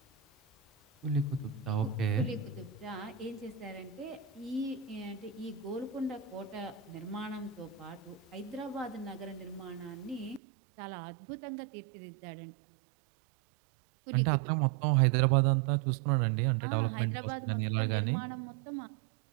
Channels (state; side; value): drops out; left; at 10.4 s